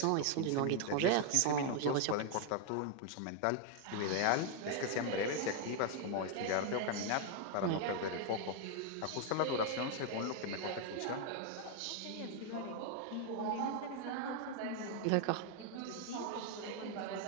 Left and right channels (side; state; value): both; different; correlation 0.00